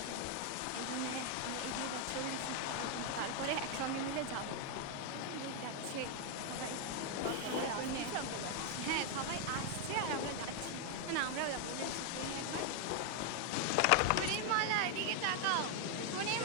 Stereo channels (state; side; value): different; both; correlation 0.00